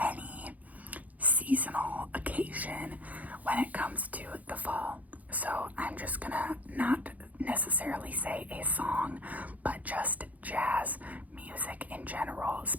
seasonal occasion when it comes to the fall. So I'm just gonna not necessarily say a song, but just jazz music in general,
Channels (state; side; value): late; left; 0.076 ms